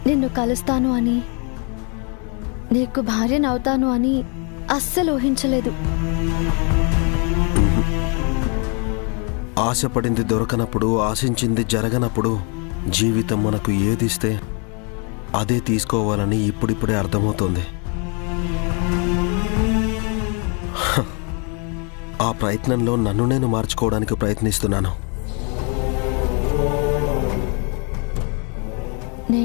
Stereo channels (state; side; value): quieter; right; 35.9 dB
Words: నిన్ను కలుస్తాను అని, నీకు భార్యనవుతాను అని అస్సలు ఊహించలేదు. ఆశపడింది దొరకనప్పుడు, ఆశించింది జరగనప్పుడు జీవితం మనకు ఏదిస్తే అదే తీసుకోవాలని ఇప్పుడిప్పుడే అర్థమవుతోంది. ఆ ప్రయత్నంలో నన్ను నేను మార్చుకోవడానికి ప్రయత్నిస్తున్నాను.